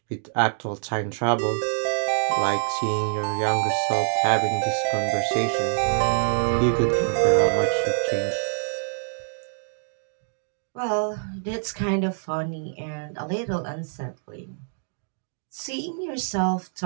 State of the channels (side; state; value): left; silent; digital silence